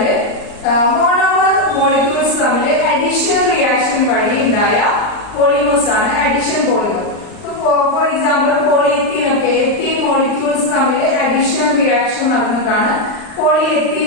മോണോമർ മോളിക്യൂൾസ് തമ്മിൽ അഡിഷൻ റിയാക്ഷൻ വഴി ഉണ്ടായ പോളിമേഴ്സ് ആണ് അഡിഷൻ പോളിമർ. ഫോർ എക്സാമ്പിൾ പോളിയെത്തീൻ ഒക്കെ എത്തീൻ മോളിക്യൂൾസ് തമ്മിൽ അഡിഷൻ റിയാക്ഷൻ നടന്നിട്ടാണ്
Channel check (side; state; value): right; late; 39 ms